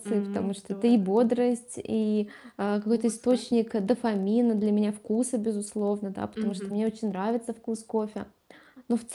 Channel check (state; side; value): identical; both; correlation 1.00